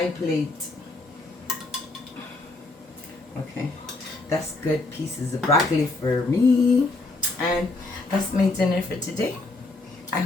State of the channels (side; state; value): right; quieter; 3.2 dB